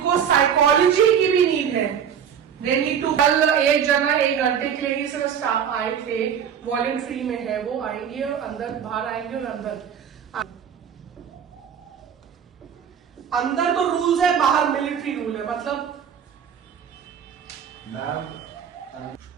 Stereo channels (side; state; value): left; quieter; 8.2 dB